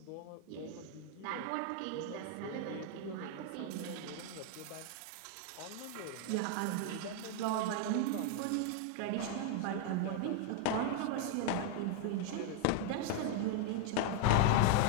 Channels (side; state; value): both; different; correlation 0.00